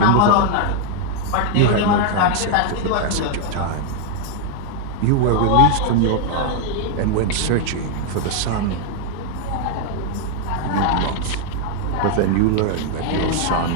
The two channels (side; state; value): both; different; correlation 0.00